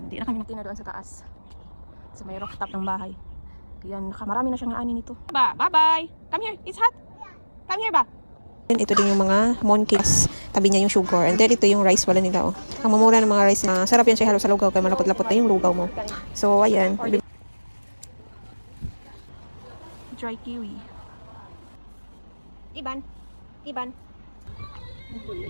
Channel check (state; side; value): inverted; both; correlation -1.00